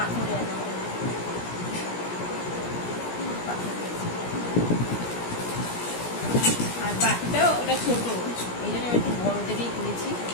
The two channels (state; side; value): late; right; 17 ms